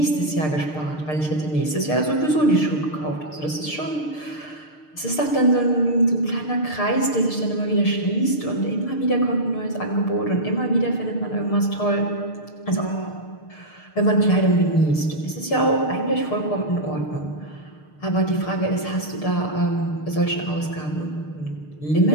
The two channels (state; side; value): late; right; 6.6 ms